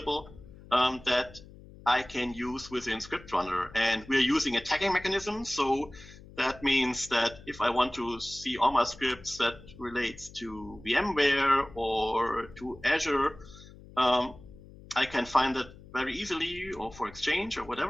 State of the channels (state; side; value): noise; left; hum, 19 dB below the sound